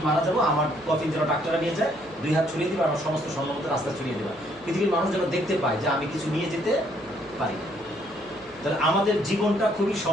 মারা যাবো আমার কফিন যেন ডাক্তাররা নিয়ে যায়, 2 হাত ছড়িয়ে দিবে, আমার সমস্ত স্বর্ণমতো রাস্তা ছড়িয়ে দেবে, পৃথিবীর মানুষ যেন দেখতে পায় যে আমি কিছু নিয়ে যেতে পারি। তাহলে আমাদের জীবনটা খুবই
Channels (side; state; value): left; noise; hum, 28 dB below the sound